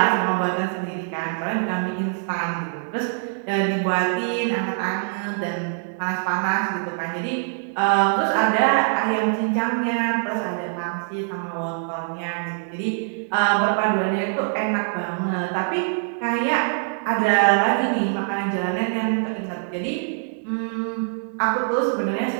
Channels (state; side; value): silent; left; digital silence